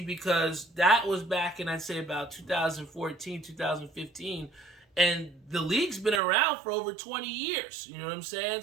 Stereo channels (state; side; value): drops out; left; at 6.2 s